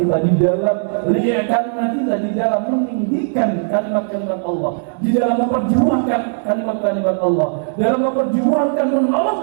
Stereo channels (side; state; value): left; silent; 68 dB below the other